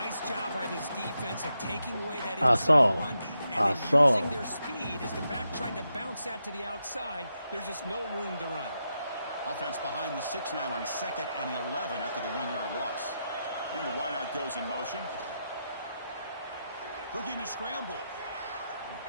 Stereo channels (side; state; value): both; inverted; correlation -0.85